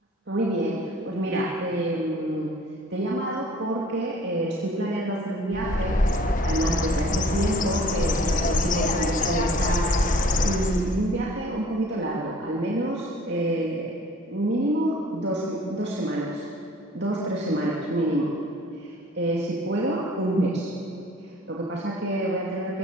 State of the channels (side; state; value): both; normal; correlation 0.52